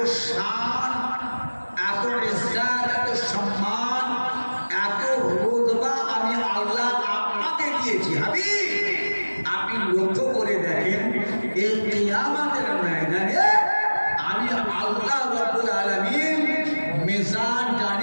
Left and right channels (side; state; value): both; inverted; correlation -1.00